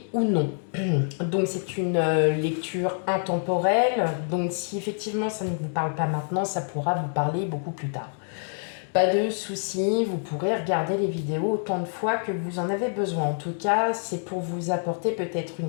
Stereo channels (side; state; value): right; silent; 61 dB below the other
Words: ou non. Donc c'est une lecture intemporelle. Donc si effectivement ça ne vous parle pas maintenant, ça pourra vous parler beaucoup plus tard. Pas de souci, vous pourrez regarder les vidéos autant de fois que vous en avez besoin. En tout cas, c'est pour vous apporter peut-être une